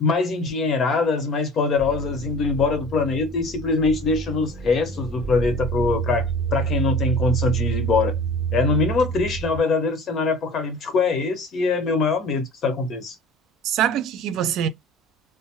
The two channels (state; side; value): normal; both; correlation 0.42